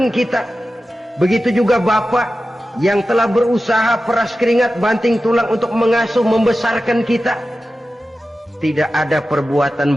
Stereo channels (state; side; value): normal; both; correlation 0.93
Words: kita. Begitu juga bapak yang telah berusaha peras keringat banting tulang untuk mengasuh membesarkan kita. Tidak ada perbuatan